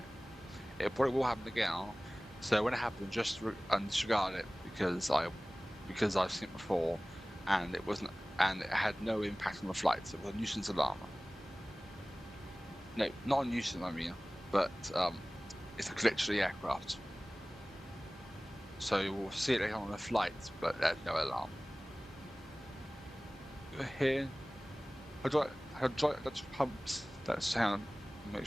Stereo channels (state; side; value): normal; both; correlation 0.98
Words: probably will happen again. So when it happens, just disregard it because I've seen it before, and it had no impact on the flights. It was a nuisance alarm. No, not a nuisance, I mean, but it's a glitch to the aircraft. So you will see it later on the flights, but there's no alarm. Here, hydraulic pumps. Let's make